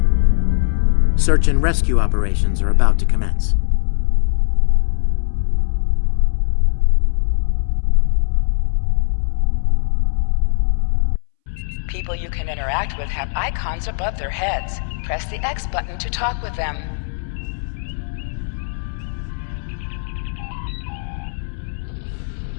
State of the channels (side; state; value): right; silent; 64 dB below the other